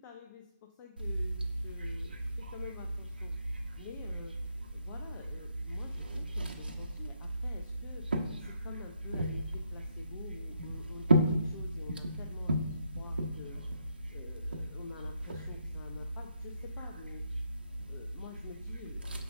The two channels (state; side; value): inverted; both; correlation -0.77